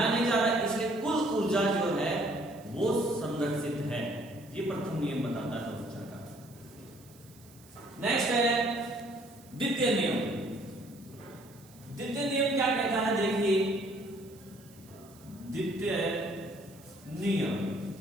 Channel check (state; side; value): noise; right; hiss, 25 dB below the sound